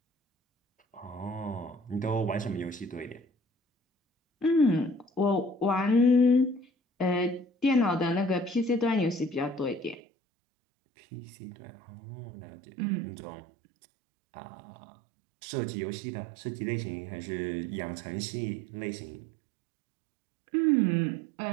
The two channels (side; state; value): left; drops out; at 10.0 s